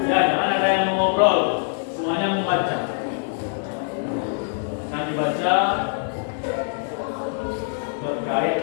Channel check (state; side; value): silent; right; 62 dB below the other